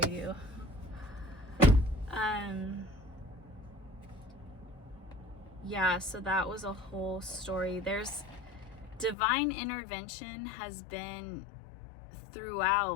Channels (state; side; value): drops out; right; at 9.2 s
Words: Yeah, so that was a whole story. There's divine intervention has been